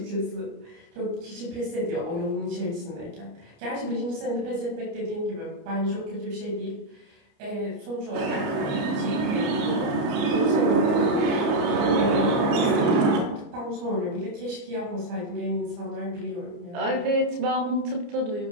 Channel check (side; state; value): left; late; 29 ms